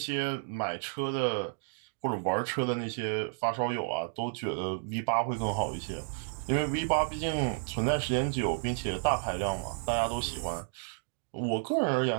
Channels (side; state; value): left; silent; digital silence